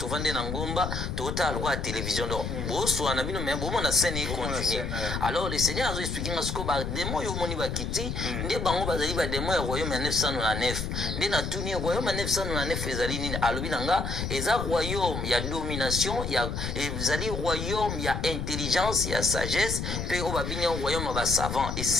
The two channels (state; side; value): noise; left; rumble, 4 dB below the sound